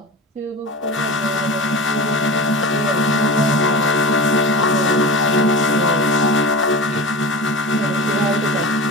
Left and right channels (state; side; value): normal; both; correlation 0.30